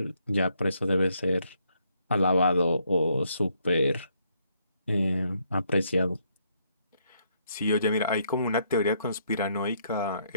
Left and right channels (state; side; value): inverted; both; correlation -0.73